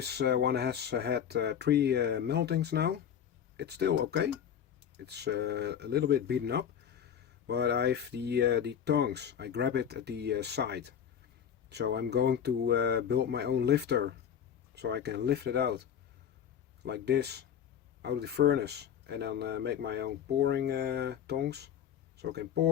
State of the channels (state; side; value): quieter; right; 8.7 dB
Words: one has had 3 meltings now. It's still okay. It's a little bit beaten up, but I've the tongs. I grab it at the side. So I'm going to build my own lifter, so I can lift it out like this out of the furnace, and then make my own pouring tongs, so I can